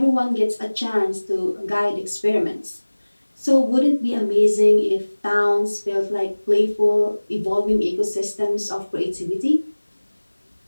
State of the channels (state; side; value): inverted; both; correlation -1.00